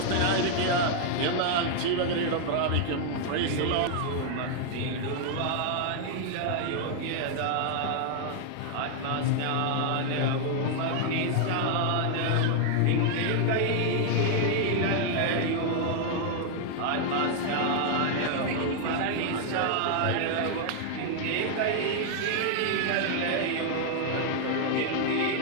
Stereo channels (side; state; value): both; different; correlation 0.00